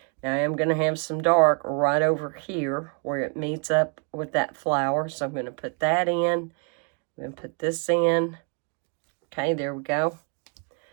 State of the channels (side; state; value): left; quieter; 36.8 dB